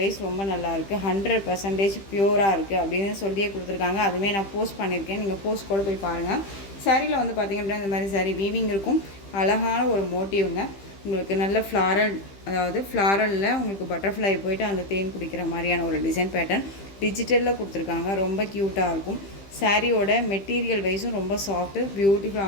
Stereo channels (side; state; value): right; late; 15 ms